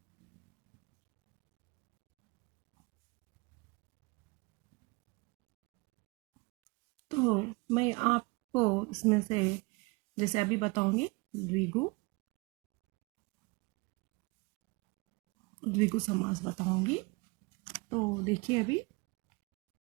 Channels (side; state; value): left; quieter; 27.0 dB